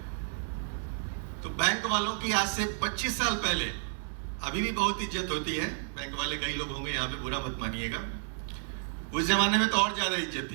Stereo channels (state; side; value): silent; left; digital silence